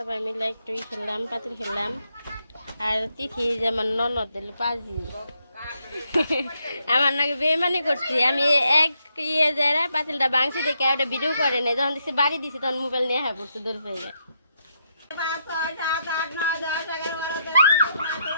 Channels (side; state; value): both; inverted; correlation -0.79